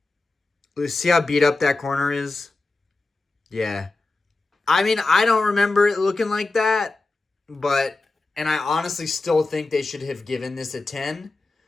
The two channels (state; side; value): quieter; right; 3.4 dB